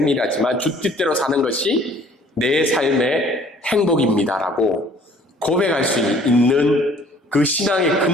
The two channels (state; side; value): normal; both; correlation 0.56